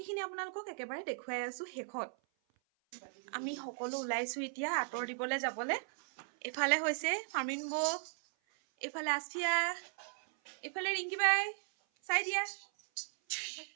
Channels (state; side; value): silent; left; 53 dB below the other